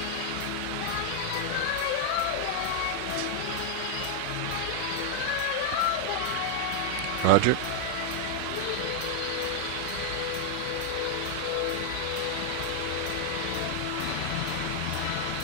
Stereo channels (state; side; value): different; both; correlation 0.00